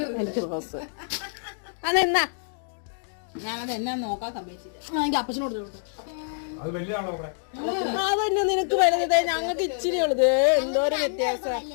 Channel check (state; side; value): silent; right; digital silence